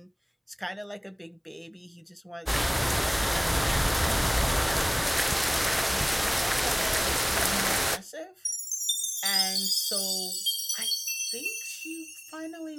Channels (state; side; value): identical; both; correlation 1.00